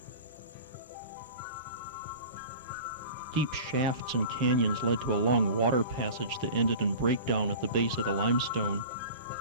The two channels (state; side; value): inverted; both; correlation -0.37